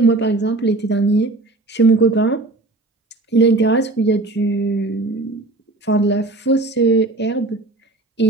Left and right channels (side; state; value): left; quieter; 3.0 dB